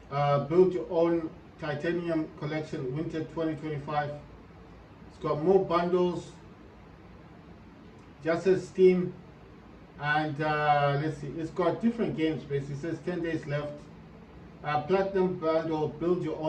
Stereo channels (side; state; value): both; identical; correlation 1.00